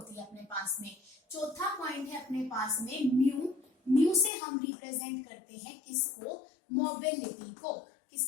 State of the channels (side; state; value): right; drops out; at 4.3 s